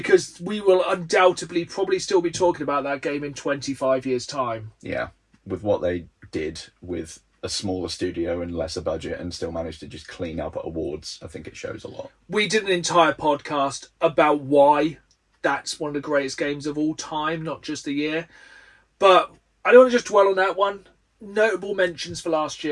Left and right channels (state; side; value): identical; both; correlation 1.00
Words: we will undoubtedly probably still be talking about that game in 25 years' time. Yeah, with what they did with a smaller studio and lesser budget and still managed to just clean up at awards, I think it shows a lot. We did an entire podcast about why that's one of the greatest games of all time, not just the year. But I don't want to just dwell on that one. Notable mentions for last